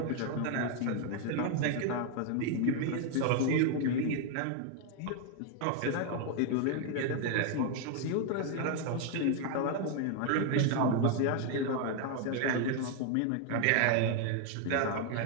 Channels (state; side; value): different; both; correlation 0.00